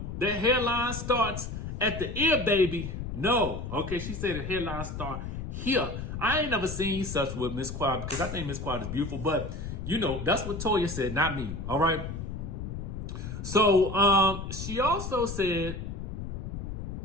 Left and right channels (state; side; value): noise; left; rumble, 6 dB below the sound